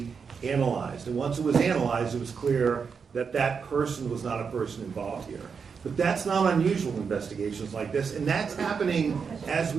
analyzed. And once it was analyzed, it was clear that that person was not a person involved here. But that's not unusual in investigations like this, and that's happening as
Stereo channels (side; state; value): left; quieter; 5.9 dB